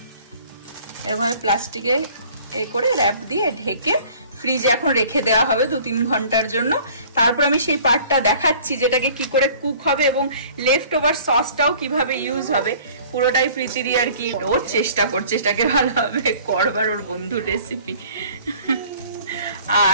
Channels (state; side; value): inverted; both; correlation -0.51